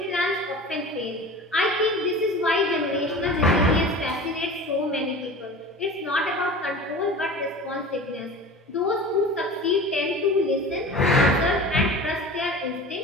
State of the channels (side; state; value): both; normal; correlation 0.36